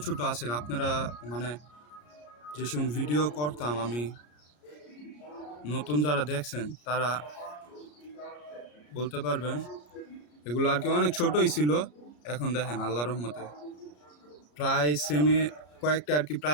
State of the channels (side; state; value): right; late; 33 ms